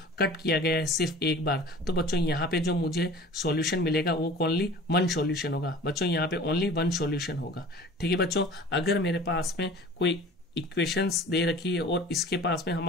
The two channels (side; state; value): both; normal; correlation 0.43